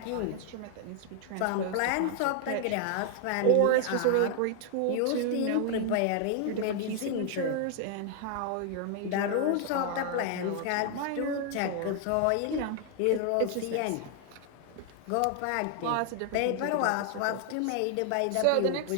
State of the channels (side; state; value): both; different; correlation 0.00